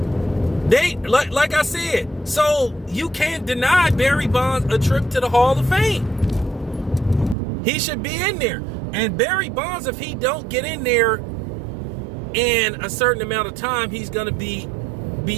They, like I said, so you can't deny Barry Bonds a trip to the Hall of Fame. He should be in there. And Barry Bonds, if he don't get in there in a certain amount of time, he's going to be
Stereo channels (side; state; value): left; drops out; at 7.4 s